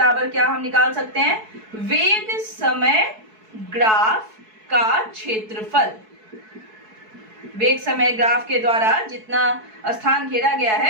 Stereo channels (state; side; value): late; left; 4.6 ms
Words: क्या हम निकाल सकते हैं, वेग समय ग्राफ का क्षेत्रफल। वेग समय ग्राफ के द्वारा जितना स्थान घेरा गया